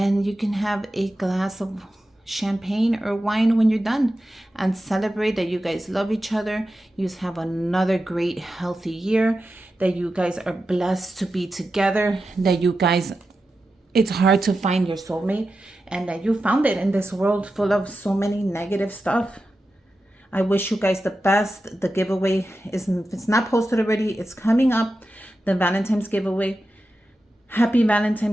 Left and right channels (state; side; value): normal; both; correlation 0.91